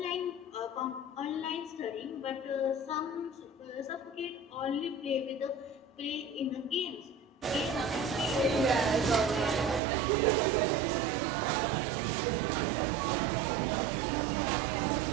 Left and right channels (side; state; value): left; drops out; at 9.8 s